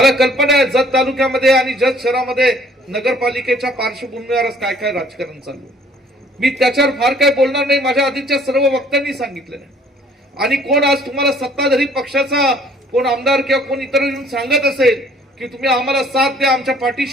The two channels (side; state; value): both; normal; correlation 0.57